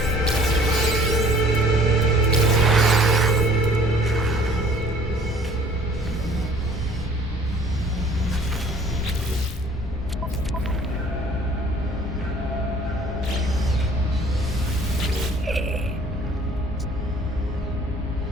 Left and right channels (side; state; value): both; normal; correlation 0.53